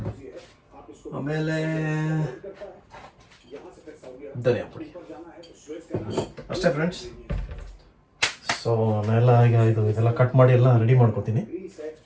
ಆಮೇಲೆ ಧನಿಯಾ ಪುಡಿ, ಅಷ್ಟೇ ಫ್ರೆಂಡ್ಸ್. ಸೊ ನಾನೆಲ್ಲ ಈಗ ಇದೆಲ್ಲ ಕಟ್ ಮಾಡಿ ಎಲ್ಲ ರೆಡಿ ಮಾಡ್ಕೋತೀನಿ.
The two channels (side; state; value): both; identical; correlation 1.00